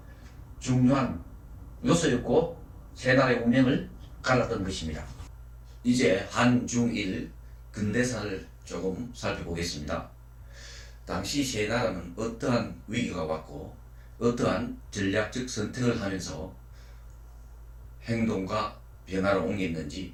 중요한 요소였고 세 나라의 운명을 갈랐던 것입니다. 이제 한중일 근대사를 조금 살펴보겠습니다. 당시 세 나라는 어떠한 위기가 왔고 어떠한 전략적 선택을 하면서 행동과 변화를 옮겼는지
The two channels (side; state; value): both; identical; correlation 1.00